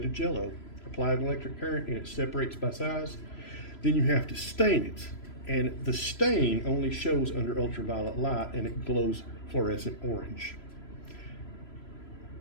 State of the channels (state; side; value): late; right; 3.0 ms